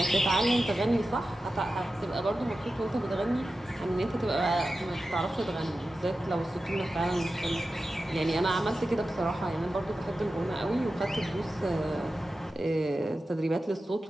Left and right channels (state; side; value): normal; both; correlation 0.93